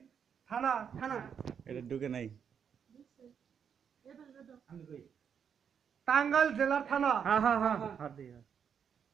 থানা থানা এটা ঢুকে নাই আমি কই টাঙ্গাইল জেলার থানা হ্যাঁ হ্যাঁ হ্যাঁ হাত দে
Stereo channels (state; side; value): quieter; left; 7.5 dB